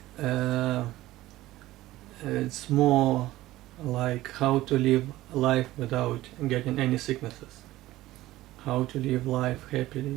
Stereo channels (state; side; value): quieter; left; 16.5 dB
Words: it's more like how to live life without getting any sicknesses, how to live life